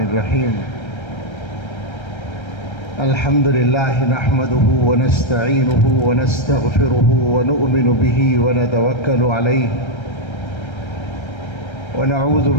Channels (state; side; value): late; right; 1.3 ms